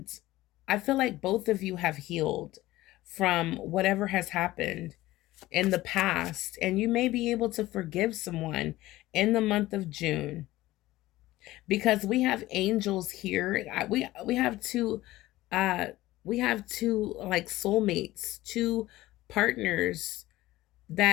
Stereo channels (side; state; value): right; quieter; 17.1 dB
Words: I feel like both of you have healed from whatever has happened in the past. And you may be able to forgive someone in the month of June because we have angels here. We have two like soulmates, two partners